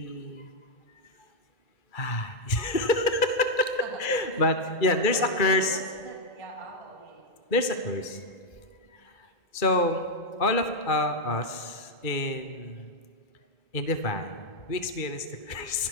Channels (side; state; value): right; late; 2.3 ms